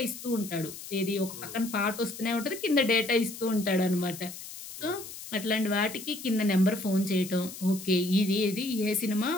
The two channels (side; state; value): left; noise; hiss, 12 dB below the sound